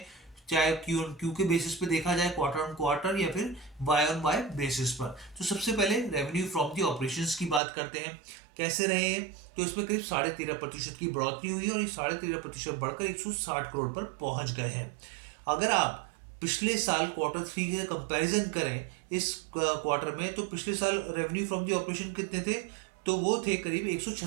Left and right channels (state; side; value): drops out; left; at 7.6 s